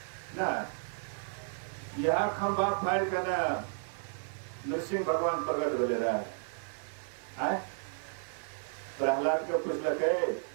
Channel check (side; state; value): left; silent; digital silence